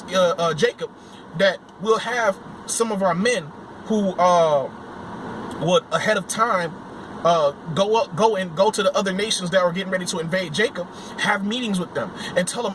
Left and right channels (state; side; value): identical; both; correlation 1.00